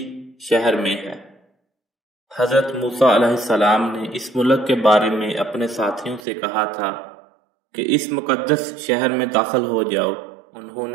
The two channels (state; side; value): drops out; left; at 6.2 s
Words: شہر میں ہے۔ حضرت موسیٰ علیہ السلام نے اس ملک کے بارے میں اپنے ساتھیوں سے کہا تھا کہ اس مقدس شہر میں داخل ہو جاؤ۔ انہوں